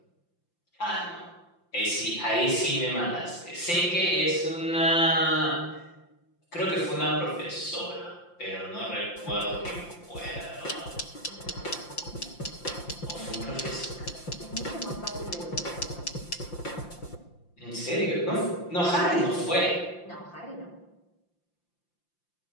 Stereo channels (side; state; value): right; late; 5.8 ms